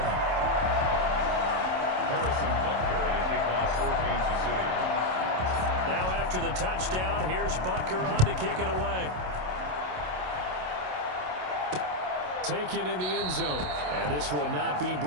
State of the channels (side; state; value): left; late; 27 ms